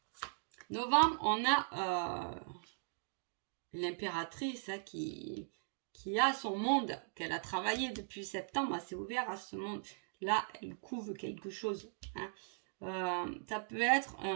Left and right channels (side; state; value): left; silent; digital silence